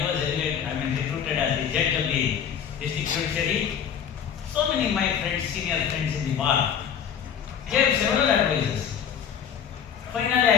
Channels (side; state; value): right; quieter; 8.2 dB